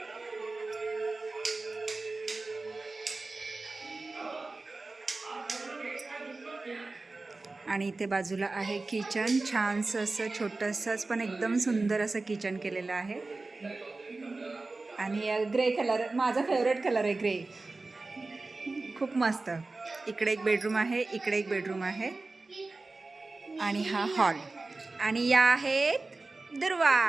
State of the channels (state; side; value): quieter; left; 3.4 dB